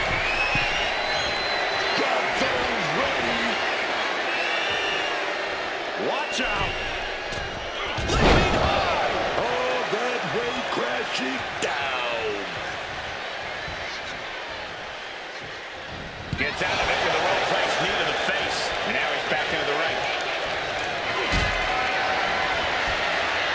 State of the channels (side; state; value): both; identical; correlation 1.00